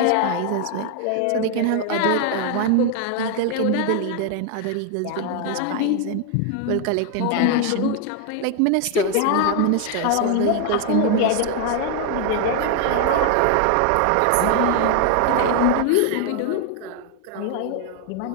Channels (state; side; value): different; both; correlation 0.00